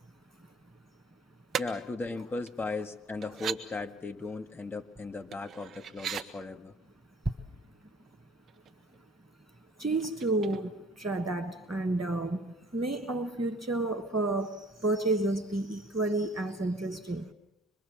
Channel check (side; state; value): both; normal; correlation 0.52